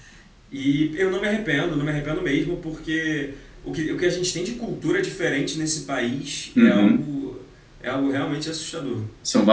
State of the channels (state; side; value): identical; both; correlation 1.00